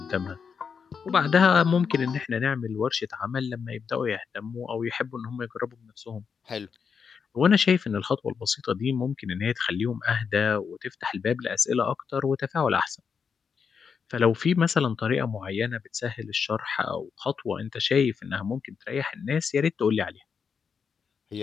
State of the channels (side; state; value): right; quieter; 6.2 dB